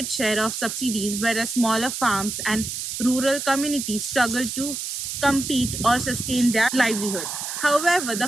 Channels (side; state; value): right; noise; hiss, 5 dB below the sound